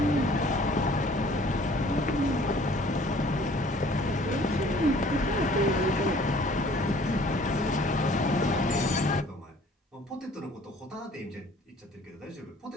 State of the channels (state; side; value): normal; both; correlation 0.54